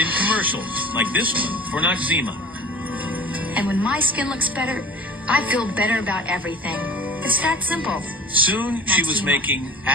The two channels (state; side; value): normal; both; correlation 0.41